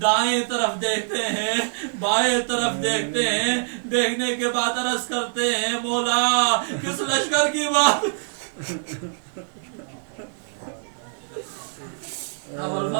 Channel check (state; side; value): silent; left; digital silence